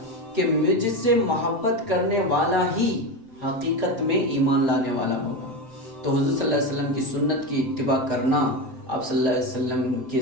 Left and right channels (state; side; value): late; left; 7.7 ms